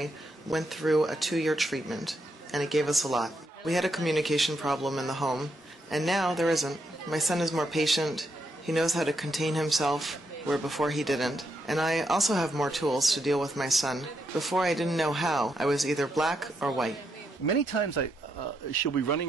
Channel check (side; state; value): both; normal; correlation 0.80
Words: went through a 2-year treatment, and it gave us a lot. We had a communication problem in the home, and now there isn't. My son is more patient. He knows how to contain himself, where before he didn't. And I also have more tools to deal with my son. Before I didn't know how. I was either black or white. Many times she'll be